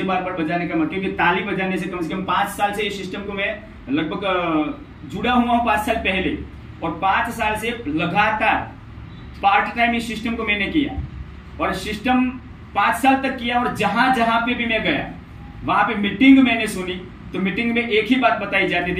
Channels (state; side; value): identical; both; correlation 1.00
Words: बार बार बजाने का मजा, क्योंकि ताली बजाने से कम 5 साल से इस सिस्टम को मैं लगभग जुड़ा हुआ हूँ 5 साल पहले, और 5 साल से लगातार पार्ट टाइम इस सिस्टम को मैंने किया और सिस्टम 5 साल तक किया। और जहां जहां पे भी मैं गया वहां पे मीटिंग मैंने सुनी तो मीटिंग में एक ही बात बताई जाती